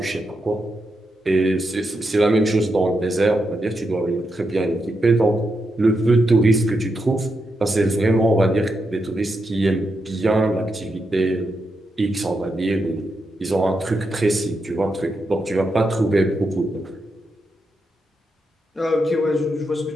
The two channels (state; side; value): normal; both; correlation 0.84